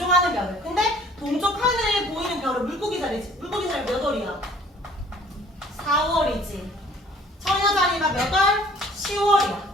별을. 근데 동쪽 하늘에 보이는 별은 물고기 자리지. 물고기 자리 몇 월이야? 4월이지. 처녀 자리가 몇 월?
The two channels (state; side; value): normal; both; correlation 0.54